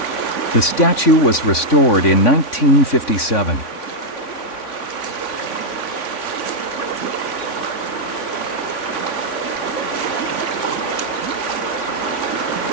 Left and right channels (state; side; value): late; right; 3.5 ms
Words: The statue was restored in 1957.